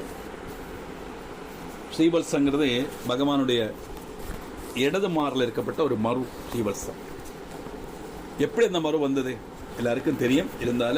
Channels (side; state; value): both; identical; correlation 1.00